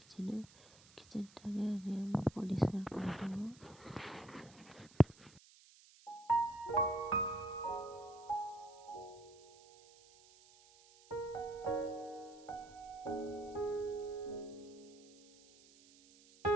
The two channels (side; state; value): right; noise; hiss, 24 dB below the sound